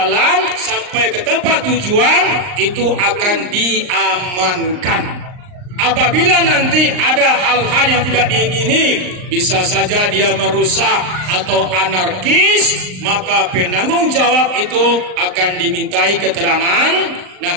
sampai ke tempat tujuan, itu akan diamankan. Apabila nanti ada hal-hal yang tidak diingini, bisa saja dia merusak atau anarkis, maka penanggung jawab itu akan dimintai keterangan. Nah,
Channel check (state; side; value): late; left; 39 ms